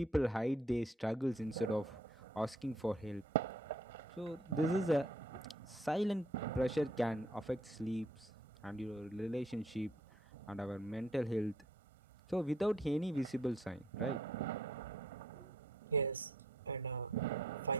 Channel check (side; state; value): both; normal; correlation 0.65